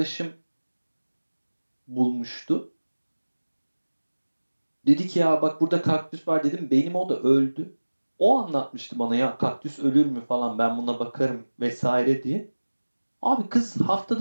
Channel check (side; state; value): both; inverted; correlation -1.00